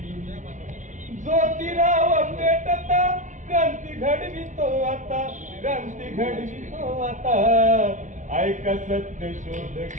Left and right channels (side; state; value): left; late; 0.36 ms